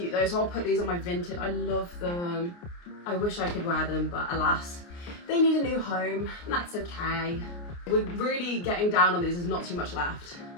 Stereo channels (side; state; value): right; late; 29 ms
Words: though, so I'll put these on my vintage. I love them. I wish I could wear them, but alas, they need a new home, and that's okay. We're really getting down on these, there's not too much left.